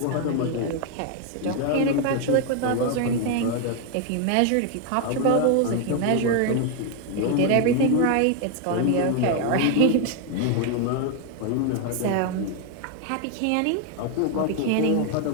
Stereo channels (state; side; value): different; both; correlation 0.01